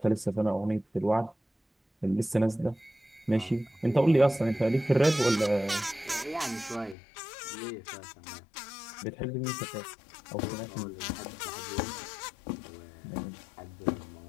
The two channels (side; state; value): right; drops out; at 7.0 s